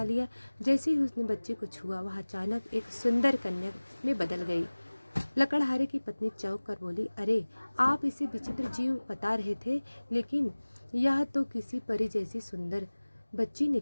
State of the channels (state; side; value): inverted; both; correlation -1.00